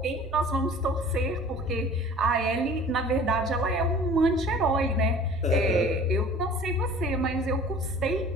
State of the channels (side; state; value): both; normal; correlation 0.46